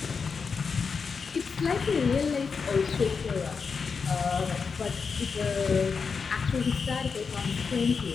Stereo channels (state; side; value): quieter; right; 5.4 dB